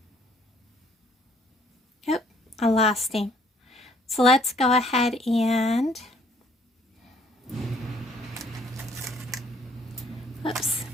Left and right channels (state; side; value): normal; both; correlation 0.62